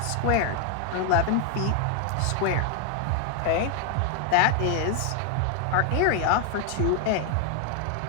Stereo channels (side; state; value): both; different; correlation 0.00